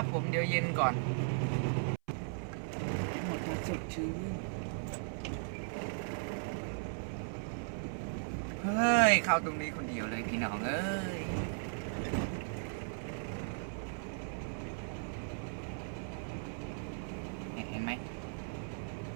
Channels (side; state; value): left; silent; 53 dB below the other